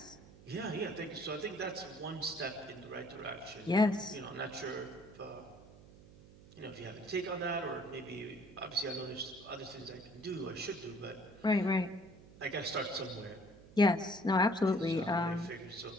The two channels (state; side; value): noise; right; hum, 21 dB below the sound